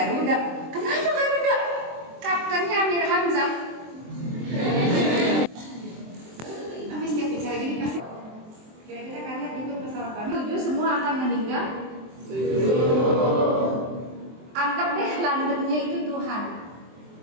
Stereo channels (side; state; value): left; late; 23 ms